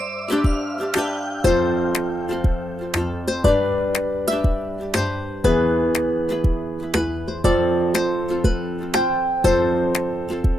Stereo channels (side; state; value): both; normal; correlation 0.85